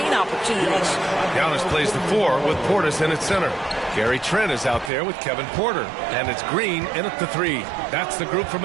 opportunities. Giannis plays the 4 with Portis in at center. Gary Trent is out there with Kevin Porter. And it's Green in at the 3. That's the group for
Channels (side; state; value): left; drops out; at 4.9 s